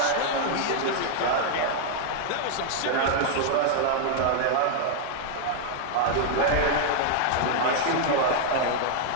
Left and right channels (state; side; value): different; both; correlation -0.01